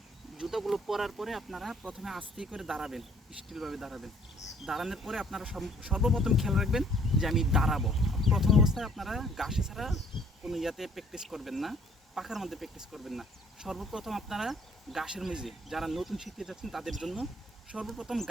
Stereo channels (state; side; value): normal; both; correlation 0.61